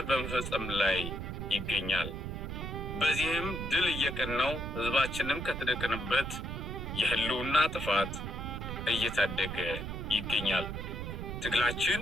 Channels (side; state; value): right; noise; rumble, 5 dB below the sound